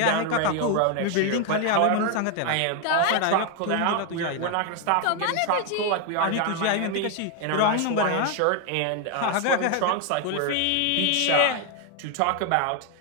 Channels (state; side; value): different; both; correlation 0.01